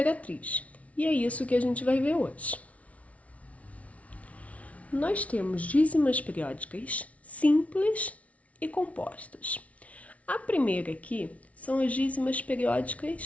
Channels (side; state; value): right; late; 0.066 ms